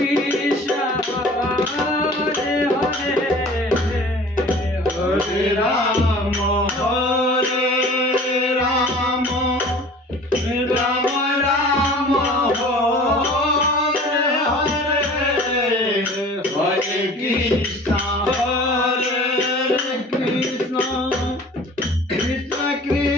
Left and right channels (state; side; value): normal; both; correlation 0.44